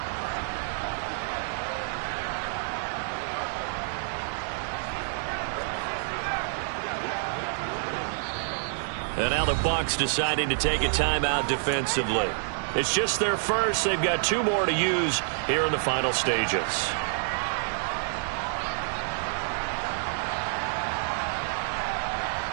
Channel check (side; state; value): left; silent; 59 dB below the other